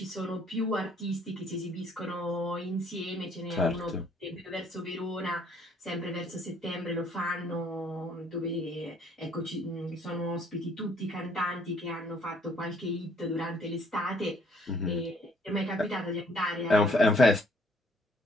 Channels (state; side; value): normal; both; correlation 0.62